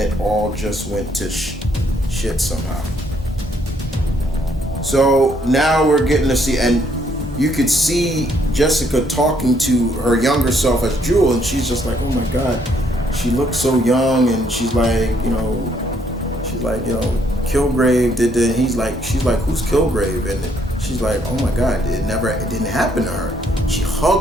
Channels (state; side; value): normal; both; correlation 0.69